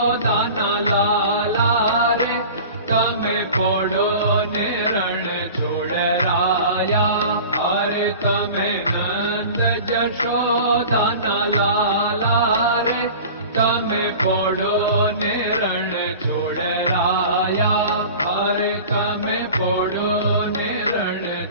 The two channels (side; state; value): both; inverted; correlation -0.39